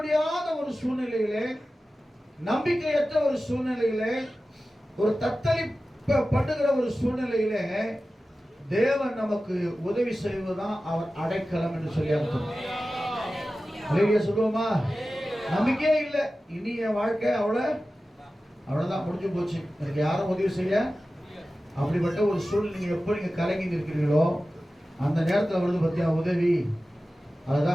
ஒரு சூழ்நிலையிலே, நம்பிக்கையற்ற ஒரு சூழ்நிலையிலே, ஒரு தத்தளிப்படுகிற ஒரு சூழ்நிலையிலே தேவன் நமக்கு உதவி செய்வதுதான் அவர் அடைக்கலம் என்று சொல்லி அர்த்தம். அல்லேலூயா சொல்லுவோமா? நம்பிக்கையே இல்லை, இனி என் வாழ்க்கை அவ்வளவுதான், முடிஞ்சு போச்சு, எனக்கு யாரும் உதவி செய்ய, அப்படிப்பட்ட ஒரு சூழ்நிலை நீங்க எப்போ நீங்க கலங்கி நிற்கிறீங்களோ அந்த நேரத்தில் வருது பத்தியா உதவி,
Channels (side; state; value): both; normal; correlation 0.95